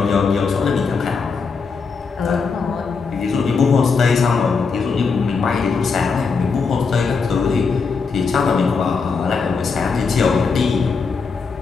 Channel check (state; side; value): quieter; right; 5.0 dB